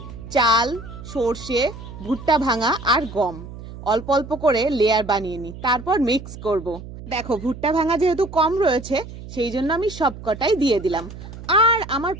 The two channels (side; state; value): right; noise; hum, 13 dB below the sound